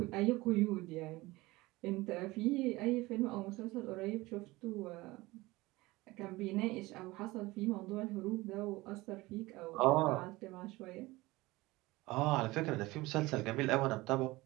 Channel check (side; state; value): left; quieter; 20.5 dB